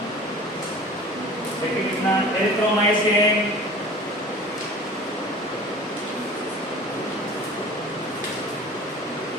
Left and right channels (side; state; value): both; normal; correlation 0.41